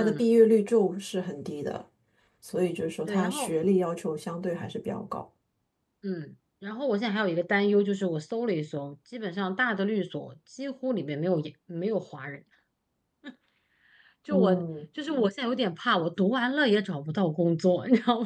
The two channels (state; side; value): identical; both; correlation 1.00